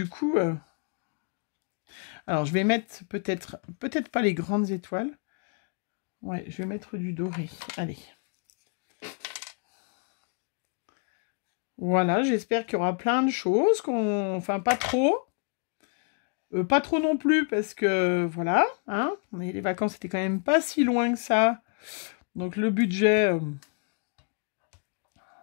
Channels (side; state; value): right; quieter; 39.9 dB